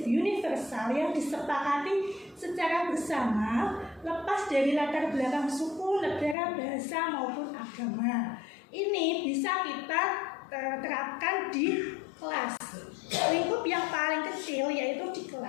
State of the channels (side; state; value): right; drops out; at 6.4 s